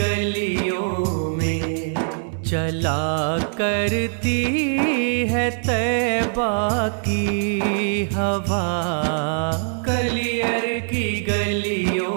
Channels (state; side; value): silent; left; 63 dB below the other